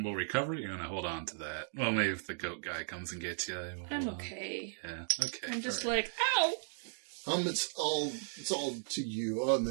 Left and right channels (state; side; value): silent; left; digital silence